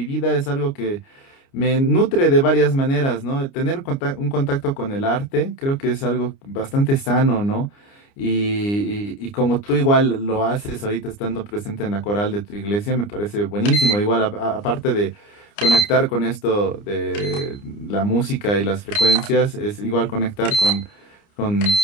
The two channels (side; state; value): right; late; 29 ms